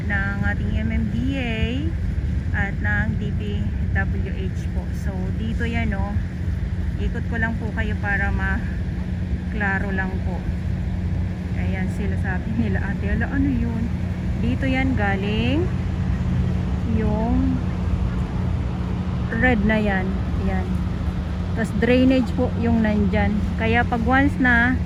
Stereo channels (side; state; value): both; identical; correlation 1.00